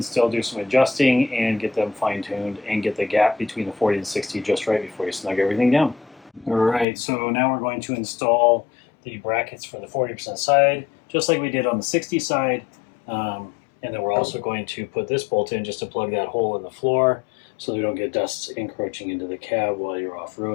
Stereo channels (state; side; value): drops out; right; at 6.9 s